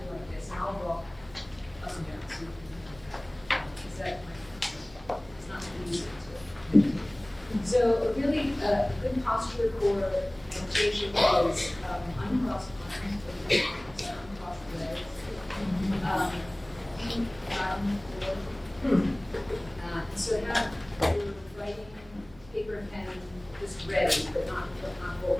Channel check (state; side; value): noise; right; hum, 23 dB below the sound